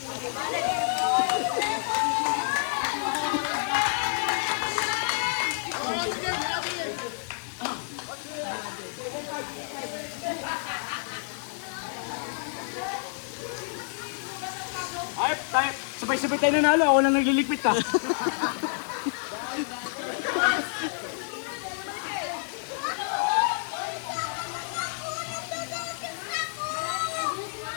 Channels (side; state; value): right; silent; digital silence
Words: Ay, tayo, sabay-sabay tayo nanalo. Ako lang nagliligpit ka.